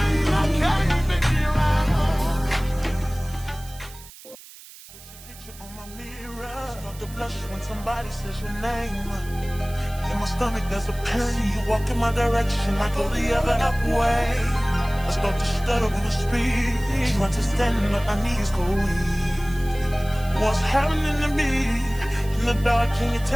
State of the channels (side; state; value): right; noise; hiss, 19 dB below the sound